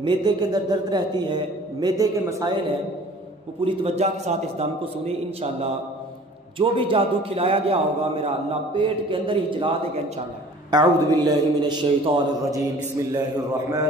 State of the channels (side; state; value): both; normal; correlation 0.49